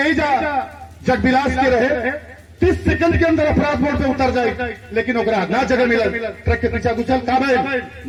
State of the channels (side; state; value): both; identical; correlation 1.00